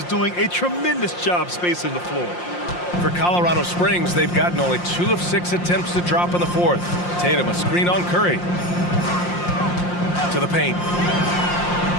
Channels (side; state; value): right; late; 5.7 ms